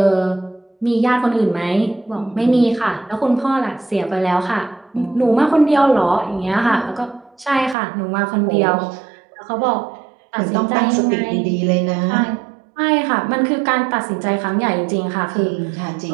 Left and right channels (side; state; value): left; drops out; at 7.8 s